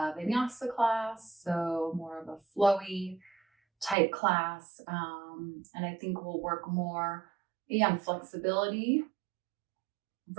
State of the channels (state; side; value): drops out; left; at 4.0 s